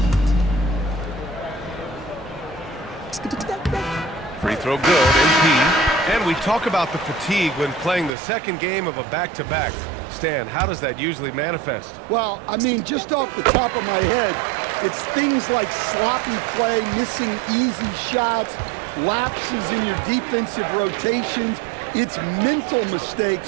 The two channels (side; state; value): left; drops out; at 8.1 s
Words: Free throw good, MP. And we talk about the fatigue when playing the second game of a back-to-back. Stan, how does that usually manifest? Well, I mean, just off the top of my head, it's things like sloppy play, missing easy shots, lapses in your defensive rotations. It's mental